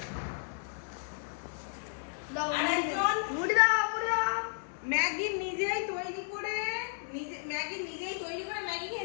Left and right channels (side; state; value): right; silent; digital silence